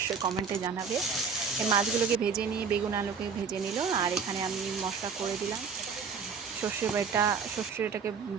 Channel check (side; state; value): left; quieter; 5.8 dB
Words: কমেন্টে জানাবে। এই মাছগুলোকে ভেজে নিয়ে বেগুন আলুকে ভেজে নিল, আর এখানে আমি মশলা করে দিলাম, সর্ষেটাকে